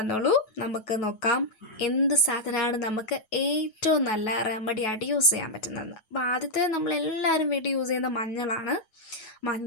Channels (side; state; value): right; late; 9.3 ms